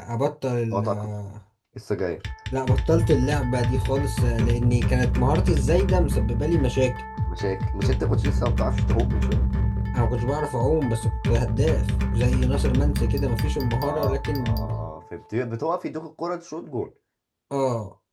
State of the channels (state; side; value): identical; both; correlation 1.00